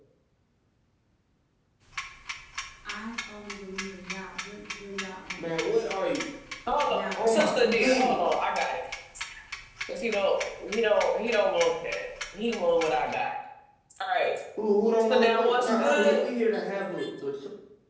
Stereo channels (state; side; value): identical; both; correlation 1.00